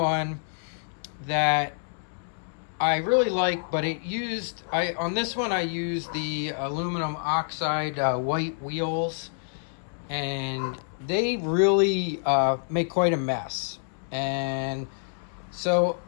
that I really like, but on this one I used the aluminum oxide white wheels, and they really make quite a mess. And so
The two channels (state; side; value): silent; right; 60 dB below the other